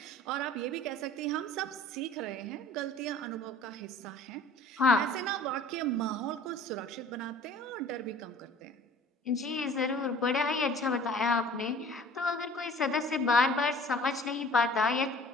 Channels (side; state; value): both; normal; correlation 0.48